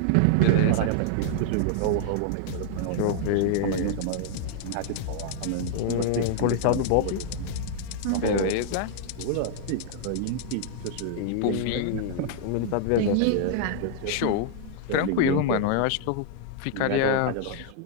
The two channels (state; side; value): different; both; correlation -0.01